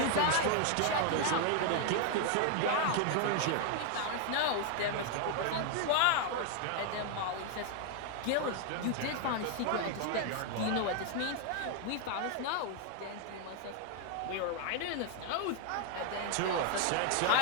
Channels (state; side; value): different; both; correlation 0.01